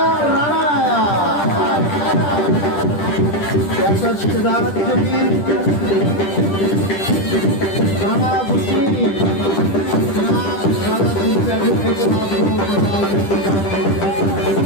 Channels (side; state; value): right; late; 10 ms